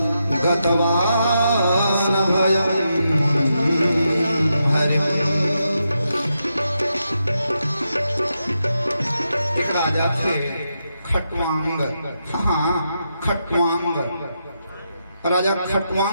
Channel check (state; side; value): inverted; both; correlation -0.84